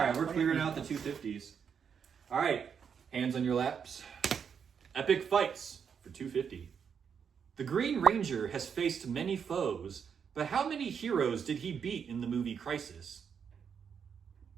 we're clearing out the 250s. All right, hands on your laps. Epic fights for 250. The Green Ranger has faced many foes, but how many heroes did he beat in the movie Crisis?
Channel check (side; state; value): left; quieter; 7.0 dB